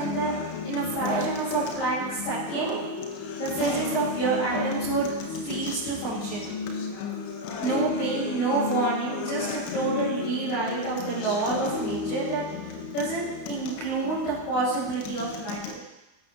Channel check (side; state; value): right; late; 31 ms